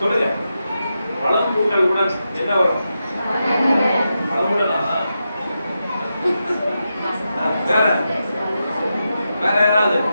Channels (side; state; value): both; inverted; correlation -0.88